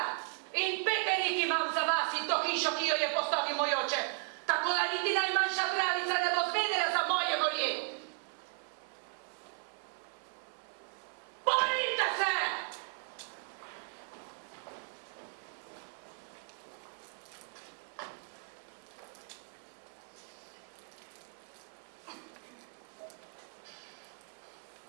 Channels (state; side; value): silent; left; 54 dB below the other